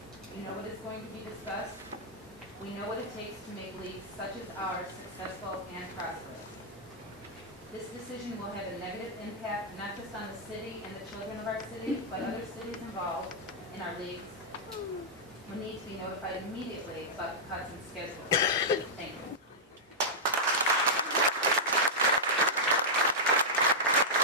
We know what is going to be discussed. We know what it takes to make leagues such as ours successful and prosperous. This decision will have a negative impact not just on the city and the children of our city, but other cities involved in our leagues will need to be notified immediately about the cuts and schedules. Thank you.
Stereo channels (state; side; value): normal; both; correlation -0.09